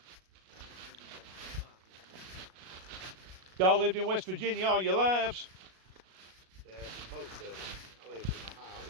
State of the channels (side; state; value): left; late; 37 ms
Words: Y'all lived in West Virginia all your lives? Yeah, most of it. I lived in Ohio. I